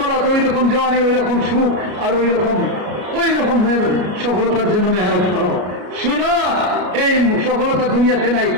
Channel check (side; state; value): left; late; 33 ms